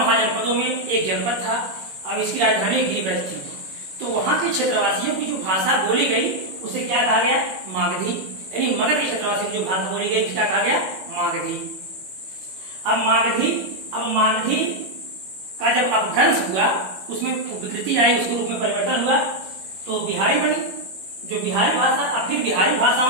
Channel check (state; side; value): late; left; 21 ms